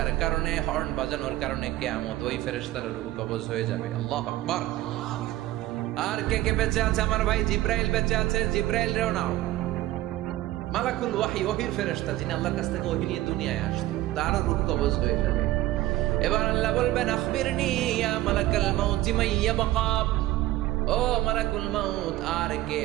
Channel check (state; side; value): quieter; left; 15.9 dB